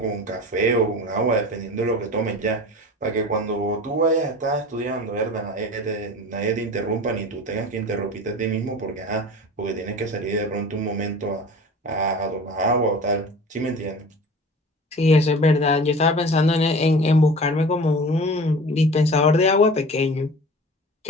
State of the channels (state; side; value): normal; both; correlation 0.38